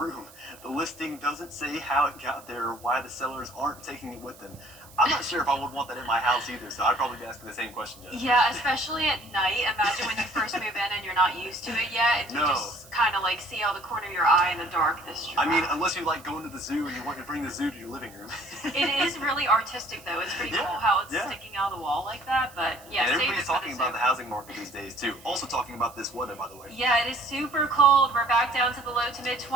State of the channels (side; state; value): right; noise; hiss, 22 dB below the sound